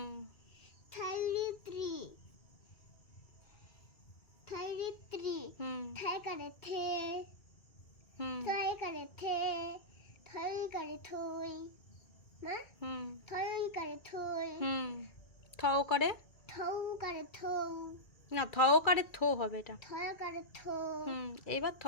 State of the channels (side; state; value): right; late; 2.3 ms